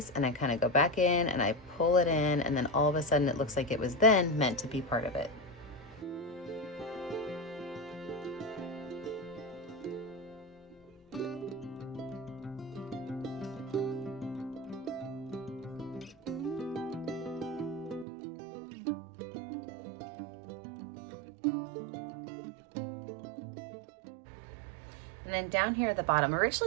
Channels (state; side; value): drops out; left; at 18.1 s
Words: and I kind of go back in and I pull it in, and then all of a sudden it looks like it was then meant to be part of it. And then down here at the bottom,